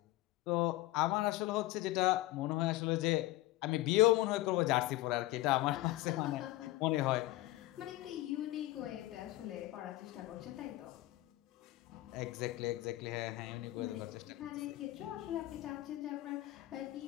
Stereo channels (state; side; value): quieter; right; 17.4 dB